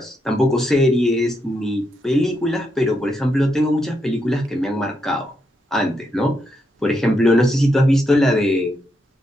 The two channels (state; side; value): normal; both; correlation 0.81